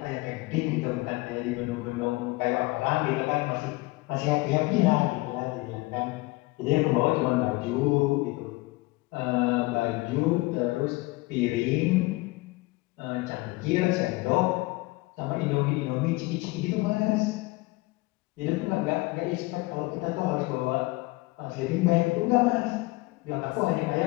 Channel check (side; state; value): right; quieter; 22.3 dB